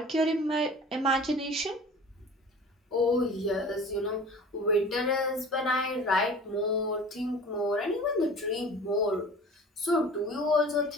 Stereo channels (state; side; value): normal; both; correlation 0.42